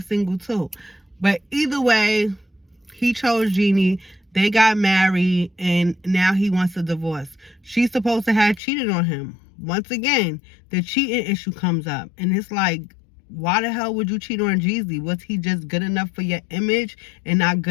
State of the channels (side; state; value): right; drops out; at 8.6 s